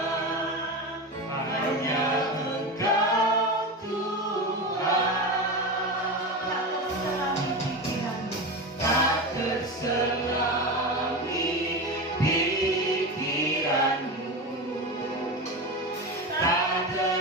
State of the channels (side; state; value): both; normal; correlation 0.22